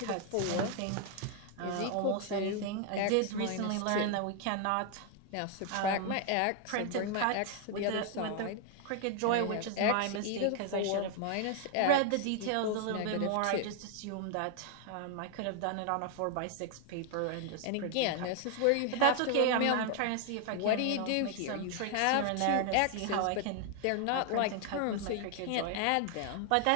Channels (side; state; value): both; different; correlation 0.00